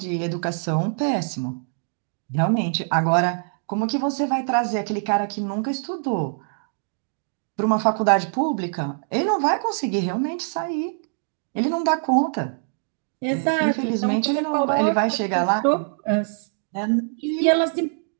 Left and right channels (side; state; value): left; silent; digital silence